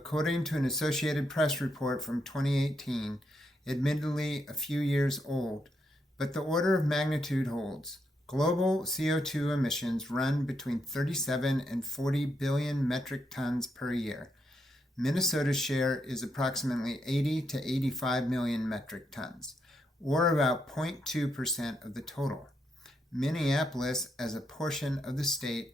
to an Associated Press report from 2018, admittedly a few years old, but the order of magnitude holds. Global CO2 emissions run between 37 and 40 billion metric tons per year. Minnesota's share is approximately 80 to 85 million metric tons, or about 0.2% of the total. Minneapolis, as a portion of the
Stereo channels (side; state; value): both; normal; correlation 0.80